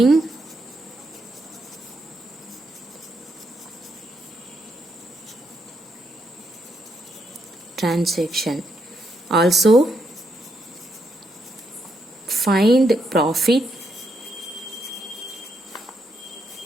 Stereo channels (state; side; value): normal; both; correlation 0.78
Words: transaction. Also find profit